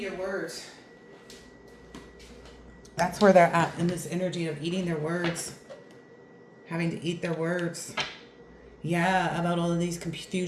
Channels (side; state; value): both; identical; correlation 1.00